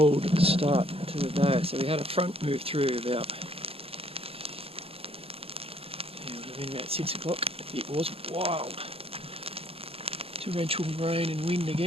start to the day. So we had a front move through about 6 o'clock. It was wild, torrential rain and wind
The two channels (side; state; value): left; late; 0.28 ms